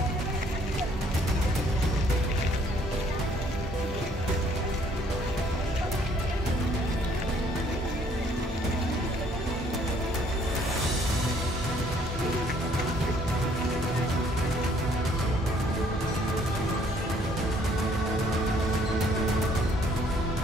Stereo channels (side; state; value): both; normal; correlation 0.63